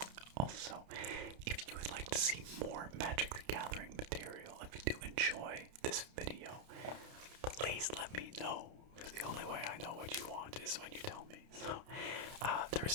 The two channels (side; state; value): left; late; 30 ms